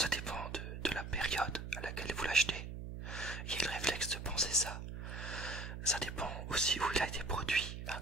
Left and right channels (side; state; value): right; noise; hum, 7 dB below the sound